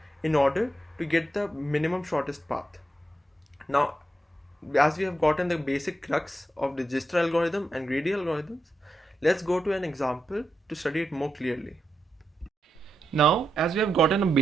in order to get the minimum shortest path. Now as we have gotten the basic crux of the Dijkstra algorithm and greedy algorithms, let's go to an example to study it more clearly. Now, as we have gotten a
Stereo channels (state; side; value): normal; both; correlation 0.85